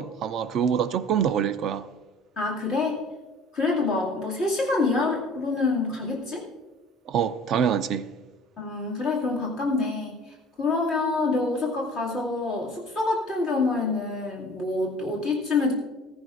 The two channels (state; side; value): normal; both; correlation 0.46